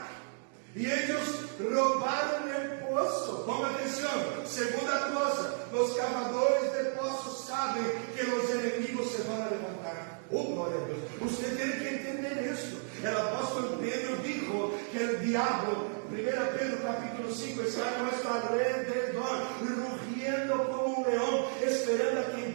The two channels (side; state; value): left; silent; 56 dB below the other